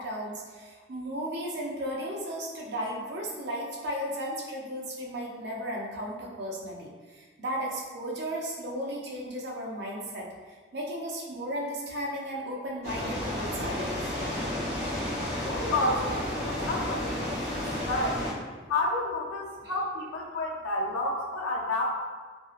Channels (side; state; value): both; normal; correlation 0.02